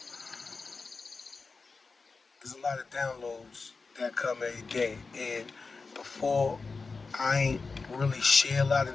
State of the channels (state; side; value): quieter; right; 4.3 dB